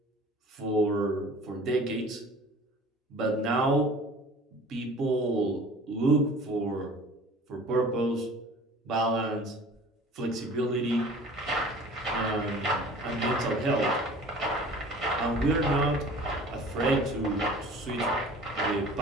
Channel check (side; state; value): both; normal; correlation 0.45